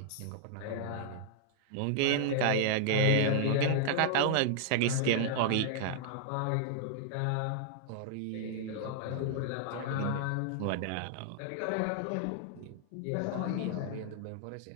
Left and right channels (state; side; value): different; both; correlation -0.01